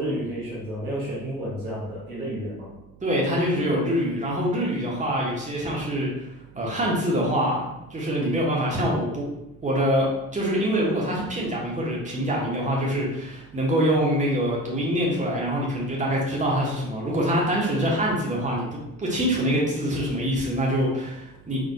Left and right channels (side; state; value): right; noise; hum, 24 dB below the sound